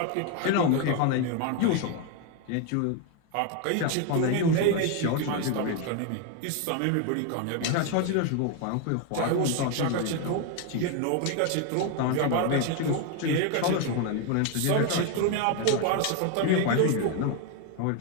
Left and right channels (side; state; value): both; different; correlation 0.01